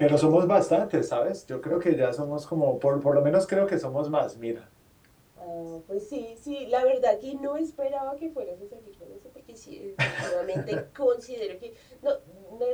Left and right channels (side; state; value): both; identical; correlation 1.00